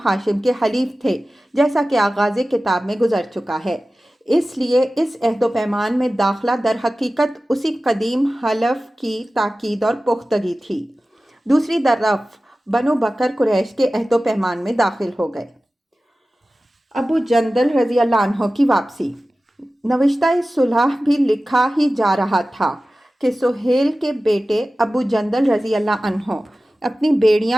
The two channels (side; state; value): both; normal; correlation 0.96